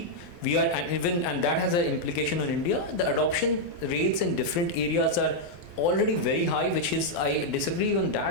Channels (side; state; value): right; late; 12 ms